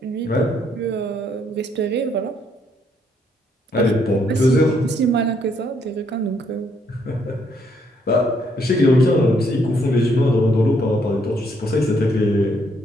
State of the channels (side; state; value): both; normal; correlation 0.71